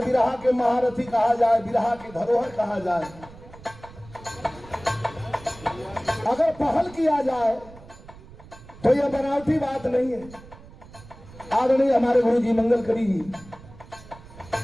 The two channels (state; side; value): noise; right; rumble, 20 dB below the sound